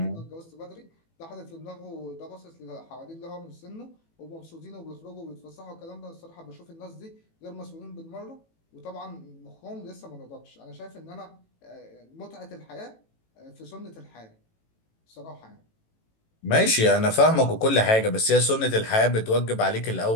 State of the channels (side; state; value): right; late; 18 ms